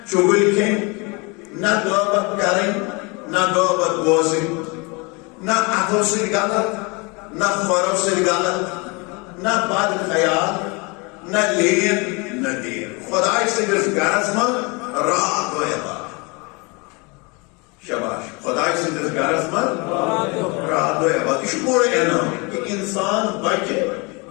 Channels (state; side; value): quieter; right; 29.0 dB